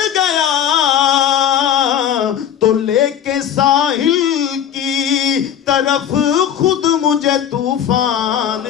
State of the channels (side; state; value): right; quieter; 9.4 dB